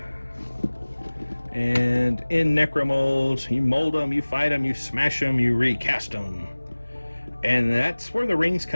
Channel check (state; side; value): inverted; both; correlation -1.00